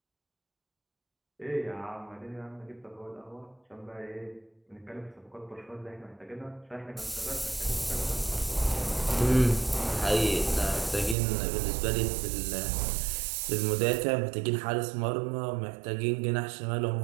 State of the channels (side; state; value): left; drops out; at 11.2 s